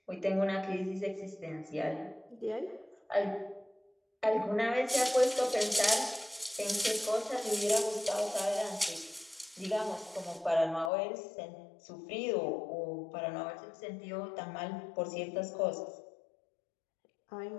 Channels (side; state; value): right; drops out; at 10.9 s